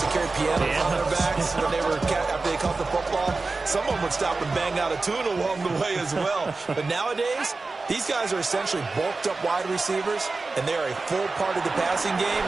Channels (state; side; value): quieter; left; 3.7 dB